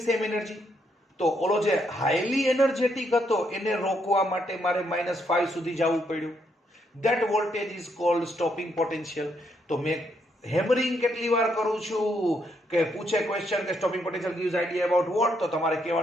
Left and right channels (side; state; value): both; normal; correlation 0.75